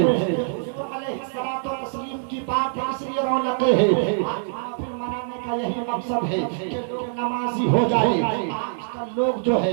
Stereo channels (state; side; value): silent; left; digital silence